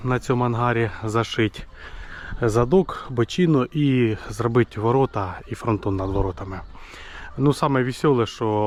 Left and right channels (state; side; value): identical; both; correlation 1.00